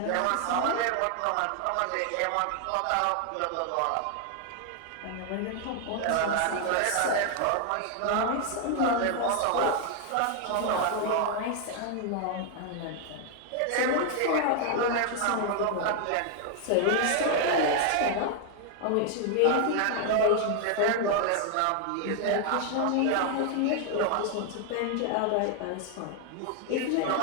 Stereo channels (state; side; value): different; both; correlation 0.00